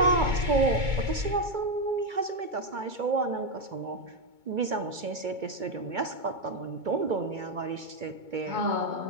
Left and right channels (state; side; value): late; left; 2.2 ms